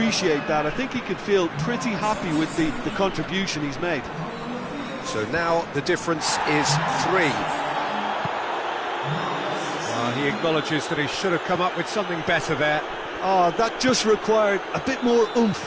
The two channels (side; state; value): both; identical; correlation 1.00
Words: that. I think he could feel pretty happy with the contribution he's made. So now the difference is 3. He acknowledges that he should have come up with something better there. That just required a bit more